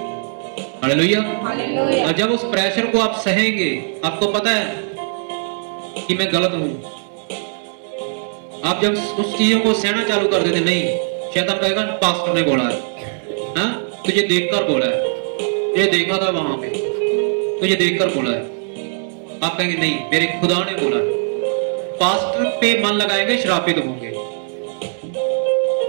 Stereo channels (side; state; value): left; silent; digital silence